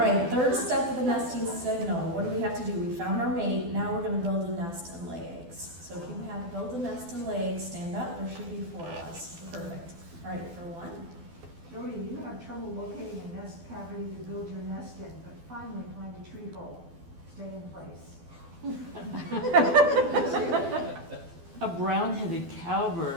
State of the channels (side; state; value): left; late; 12 ms